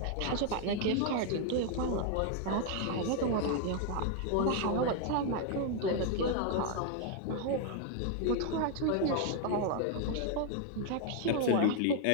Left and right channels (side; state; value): both; different; correlation 0.00